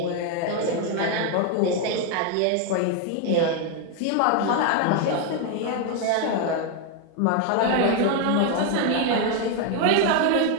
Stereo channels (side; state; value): both; different; correlation 0.01